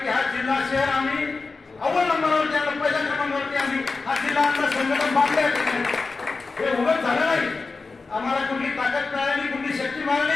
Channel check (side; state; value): right; quieter; 4.1 dB